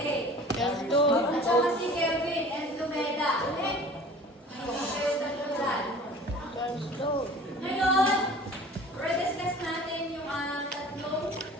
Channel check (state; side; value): normal; both; correlation 0.45